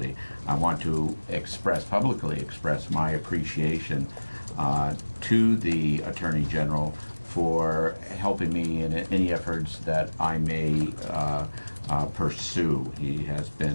I want to publicly express my appreciation to the Attorney General for helping me in any efforts that I may pursue. He has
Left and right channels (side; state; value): both; inverted; correlation -1.00